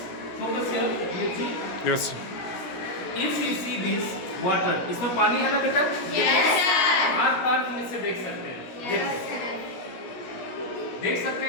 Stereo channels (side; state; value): right; late; 17 ms